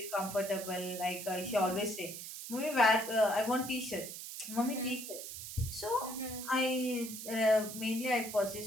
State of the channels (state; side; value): noise; right; hiss, 9 dB below the sound